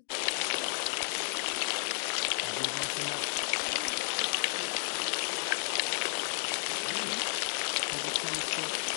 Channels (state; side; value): silent; right; 56 dB below the other